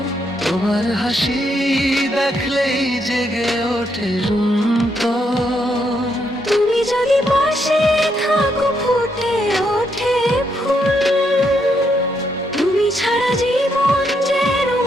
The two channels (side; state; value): both; normal; correlation 0.77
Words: তোমার হাসি দেখলেই জেগে ওঠে রুন্তর। তুমি যদি পাশে থাকো ফুটে ওঠে ফুল, তুমি ছাড়া জীবন যেন